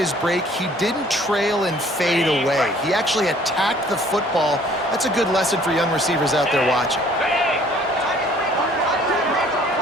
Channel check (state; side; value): normal; both; correlation 0.56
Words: break, he didn't trail and fade away. He actually attacked the football. That's a good lesson for young receivers out there watching.